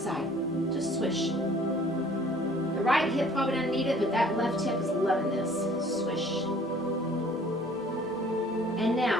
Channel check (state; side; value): normal; both; correlation 0.54